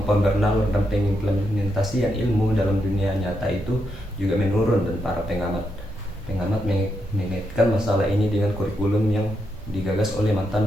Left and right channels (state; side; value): normal; both; correlation 0.82